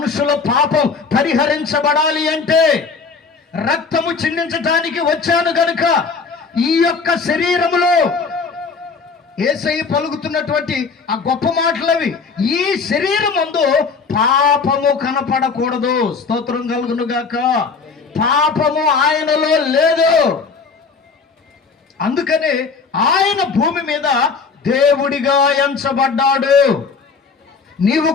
పాపం పరిహరించబడాలి అంటే రక్తము చిందించడానికి వచ్చాను గనుక ఈ యొక్క శరీరములో యేసయ్య పలుకుతున్నటువంటి ఆ గొప్ప మాటలవి, ఈ శరీరం ముందు పాపము కనపడకూడదు. స్తోత్రం కలుగును గాక. పాపము ఆయనలో లేదు. అందుకని ఆయన భూమి మీద దేవుడిగా ఎంచబడ్డాడు. నీవు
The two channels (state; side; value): quieter; right; 5.0 dB